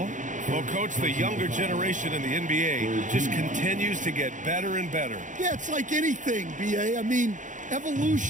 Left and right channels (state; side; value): late; left; 0.37 ms